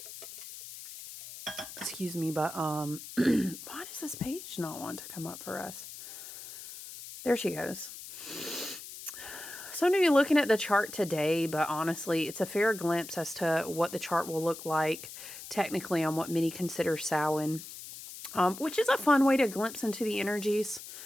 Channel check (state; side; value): noise; left; hiss, 13 dB below the sound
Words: Excuse me, but why does this page not want to come up for us? There she goes. So I'm going to be looking at the chart today, but honestly, it's a fair glimpse as to what the chart will look like technically on what many consider Samhain. Which is a fun way to glimpse into the energies,